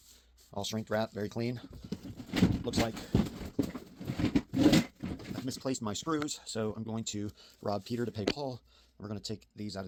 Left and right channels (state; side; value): identical; both; correlation 1.00